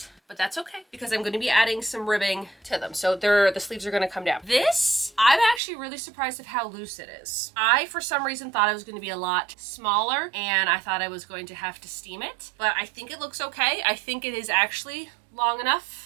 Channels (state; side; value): drops out; left; at 5.6 s